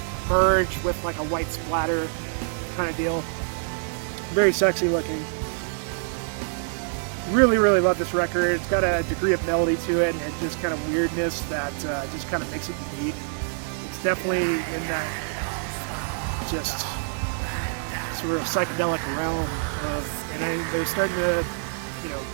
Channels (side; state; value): left; silent; 61 dB below the other